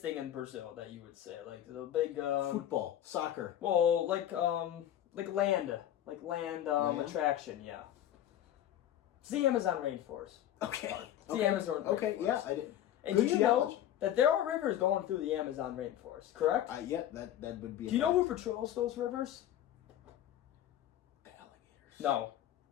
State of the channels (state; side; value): quieter; right; 11.6 dB